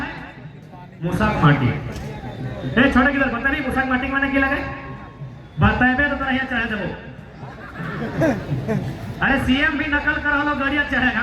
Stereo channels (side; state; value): both; identical; correlation 1.00